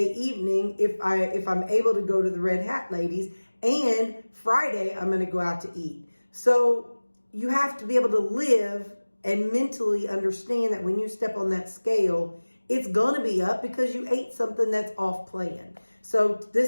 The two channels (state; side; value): inverted; both; correlation -1.00